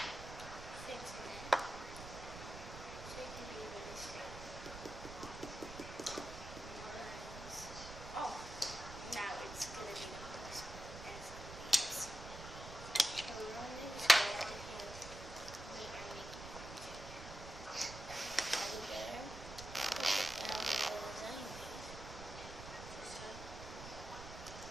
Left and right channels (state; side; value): noise; right; rumble, 11 dB below the sound